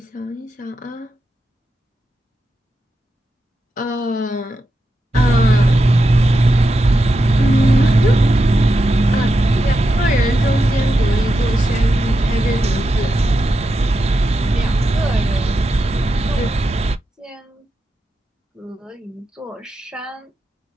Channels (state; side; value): normal; both; correlation 0.88